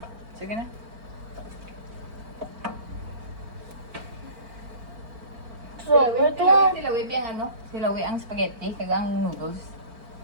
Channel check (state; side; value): late; left; 4.4 ms